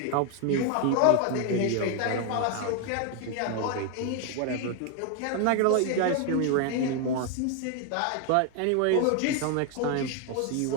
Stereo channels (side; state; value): both; different; correlation 0.01